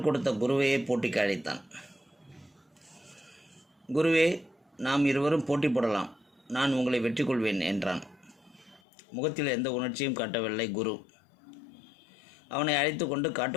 கொடுத்த குருவையே போட்டிக்கு அழைத்தான். குருவே, நாம் இருவரும் போட்டி போடலாம், நான் உங்களை வெற்றி கொள்வேன் என்றான். முகத்தில் எந்த உணர்ச்சியும் காட்டவில்லை குரு. அவனை அழைத்து கொண்டு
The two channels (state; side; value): drops out; right; at 8.8 s